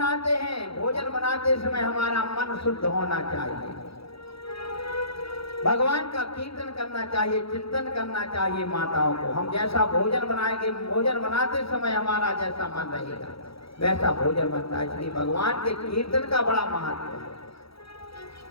हैं, भोजन बनाते समय हमारा मन शुद्ध होना चाहिए। भगवान का कीर्तन करना चाहिए, चिंतन करना चाहिए। माताओं को हम जैसा भोजन बनाएंगे, भोजन बनाते समय हमारा जैसा मन रहेगा वैसा भोजन बनता है। इसलिए भगवान के कीर्तन का बड़ा महत्व है।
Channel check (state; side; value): late; right; 0.76 ms